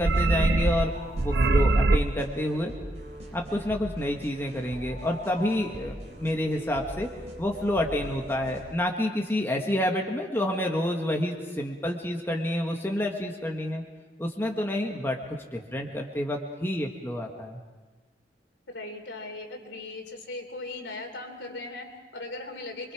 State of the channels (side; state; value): both; normal; correlation 0.76